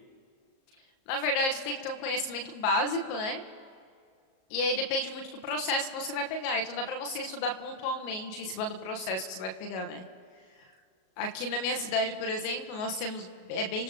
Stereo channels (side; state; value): right; late; 37 ms